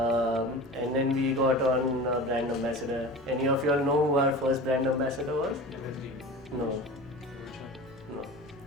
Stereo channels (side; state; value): both; normal; correlation 0.34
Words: then we got on brand ambassador. Any of you all know who our first brand ambassador was? No.